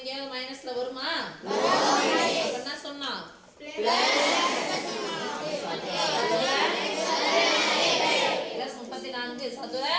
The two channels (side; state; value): both; identical; correlation 1.00